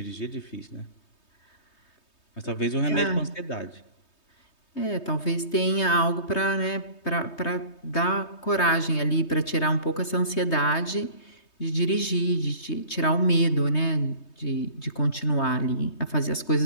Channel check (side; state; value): right; late; 3.2 ms